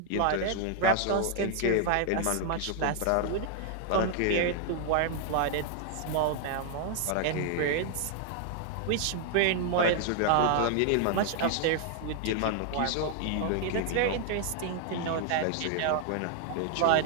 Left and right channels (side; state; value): both; different; correlation 0.00